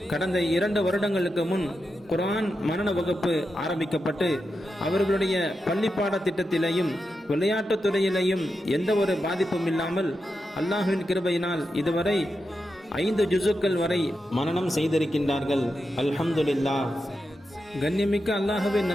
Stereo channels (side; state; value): both; normal; correlation 0.88